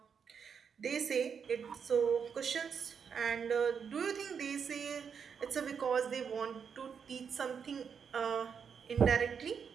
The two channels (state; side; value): quieter; left; 6.7 dB